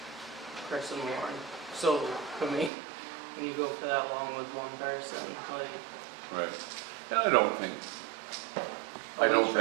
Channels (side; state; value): left; drops out; at 2.7 s